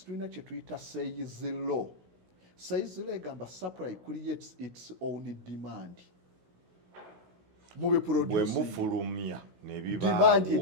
tulina kye tuyita sales law. Sales law egamba supply creates its own demand. Bwe mufulumya ne bibaawo demand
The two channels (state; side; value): late; left; 16 ms